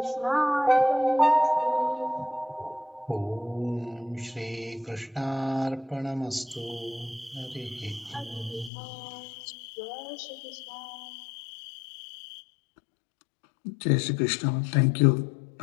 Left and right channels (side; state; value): right; drops out; at 8.7 s